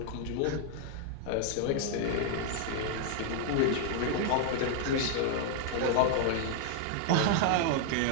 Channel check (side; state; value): both; different; correlation 0.00